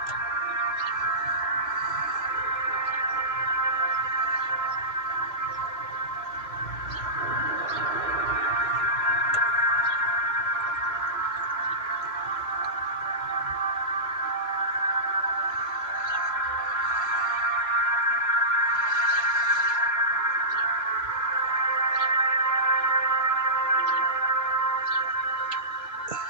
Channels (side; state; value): right; late; 3.0 ms